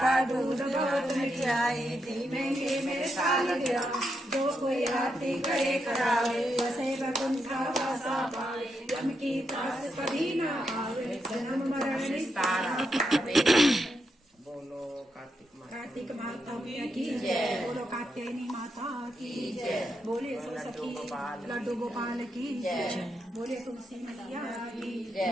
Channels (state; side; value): normal; both; correlation 0.83